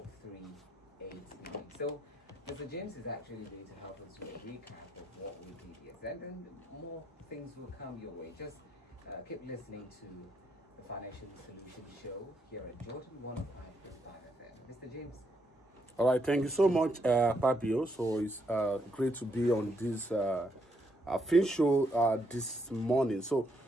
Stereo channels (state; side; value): normal; both; correlation 0.76